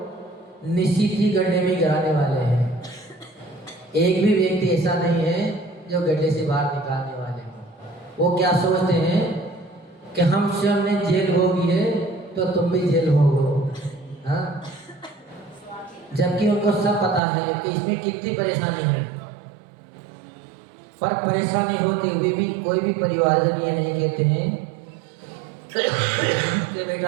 निश्चित ही गड्ढे में गिराने वाले हैं। एक भी व्यक्ति ऐसा नहीं है जो गड्ढे से बाहर निकालने वाले हैं। वो क्या सोचते हैं कि हम स्वयं ने जेल भोगी है तो तुम भी जेल भोगो, हाँ? जबकि उनको सब पता है कि इसमें कितनी परेशानी है। पर परेशानी होते हुए भी कोई भी परिवारजन ये नहीं कहते हैं कि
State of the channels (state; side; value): drops out; left; at 17.2 s